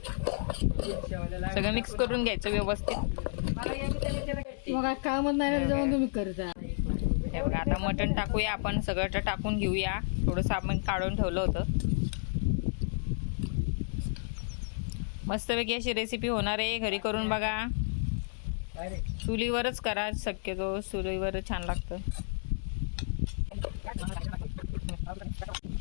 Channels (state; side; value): silent; right; digital silence